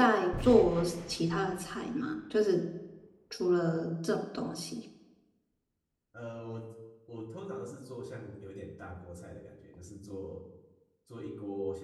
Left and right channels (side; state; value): both; identical; correlation 1.00